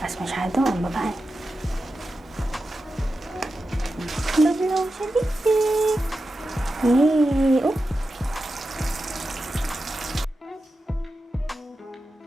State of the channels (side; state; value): both; normal; correlation 0.91